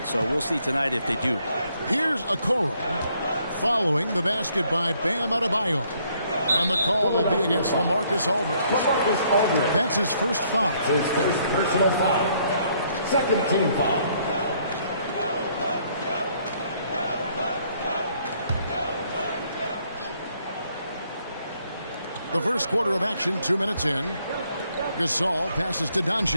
So we'll see tonight if they do. Here's Okoro following the basket by Bam Adebayo. And the call will be against LaMarcus Aldridge. That's his first foul. His first personal foul. Second team foul. The first quarter of action, 2 minutes in. Gasol passes to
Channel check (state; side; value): inverted; both; correlation -0.68